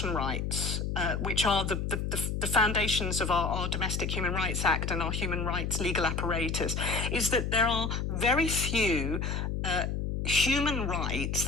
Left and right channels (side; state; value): left; noise; hum, 1 dB below the sound